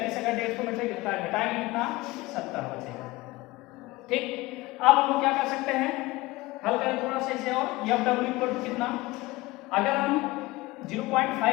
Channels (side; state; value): right; quieter; 20.3 dB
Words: अगर 150 में से घटाएंगे कितना 70 बचेगा, ठीक। अब हम लोग क्या कर सकते हैं, हल करें थोड़ा सा इसे और। एफ डब्ल्यू इक्वल टू कितना, अगर हम